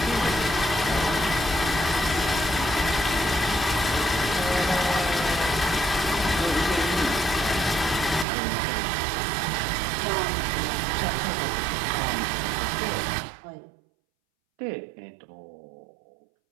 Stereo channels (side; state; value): left; drops out; at 8.2 s